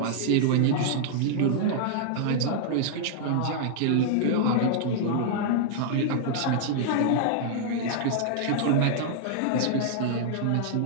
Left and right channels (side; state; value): both; different; correlation -0.01